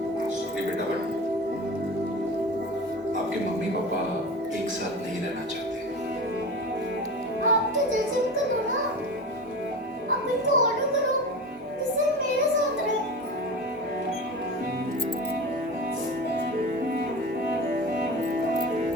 सॉरी बेटा, बट आपके मम्मी पापा एक साथ नहीं रहना चाहते। आप तो जैसे भी करो ना, आप इनको ऑर्डर करो जिससे मेरे साथ रहे।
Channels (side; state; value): both; normal; correlation 0.30